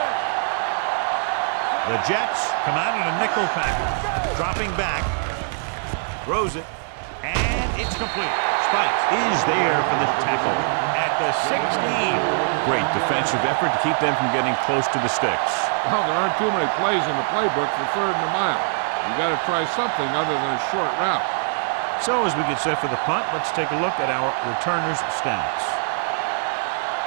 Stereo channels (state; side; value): silent; left; digital silence